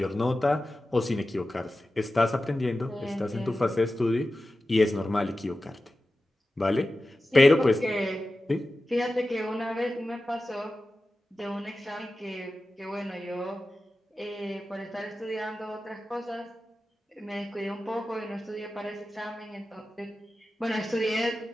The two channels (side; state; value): both; normal; correlation 0.94